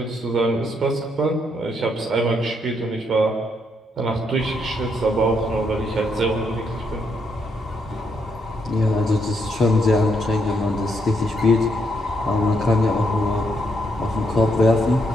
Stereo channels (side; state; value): both; normal; correlation 0.76